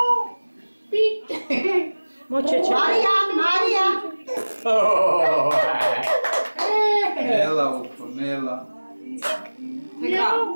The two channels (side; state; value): both; inverted; correlation -1.00